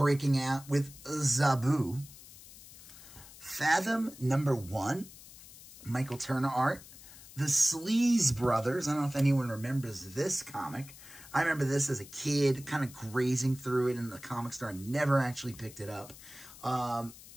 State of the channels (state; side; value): noise; left; hiss, 18 dB below the sound